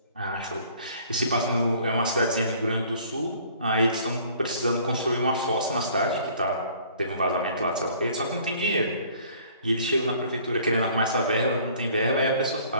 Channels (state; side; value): inverted; both; correlation -0.54